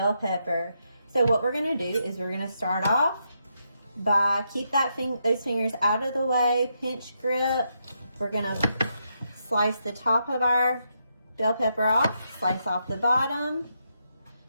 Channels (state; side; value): inverted; both; correlation -0.81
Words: pepper. So what we're going to do is we're going to start off by keep those fingers out of the way, pinch grip. We're going to slice the top of our bell pepper off, slice off the bottom.